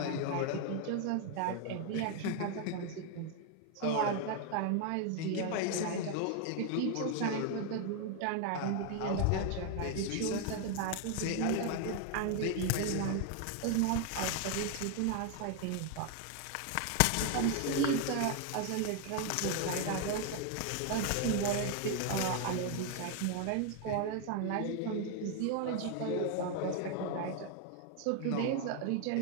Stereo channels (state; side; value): different; both; correlation 0.01